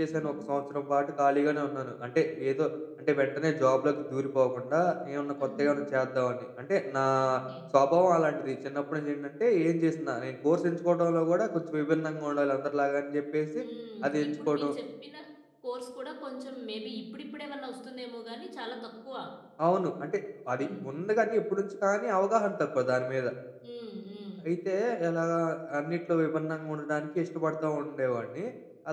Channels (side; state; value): both; identical; correlation 1.00